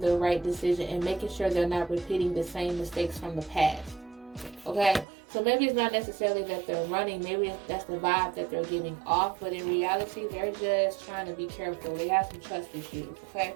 right decision and making sure they're not repeating the same mistakes from the past. Okay? So maybe it's not necessarily that they're running. Maybe that's the vibe that they're giving off. But in reality, they're just trying to be careful. They have some trust issues. Okay?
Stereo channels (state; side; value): drops out; left; at 5.1 s